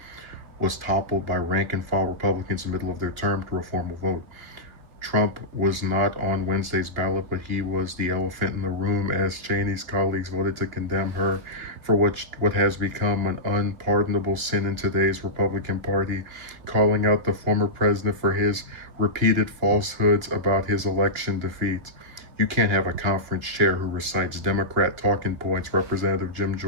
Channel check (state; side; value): late; left; 2.9 ms